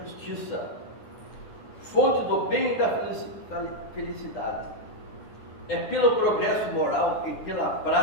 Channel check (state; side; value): late; right; 9.8 ms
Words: fonte do bem e da felicidade. é pelo progresso moral e pela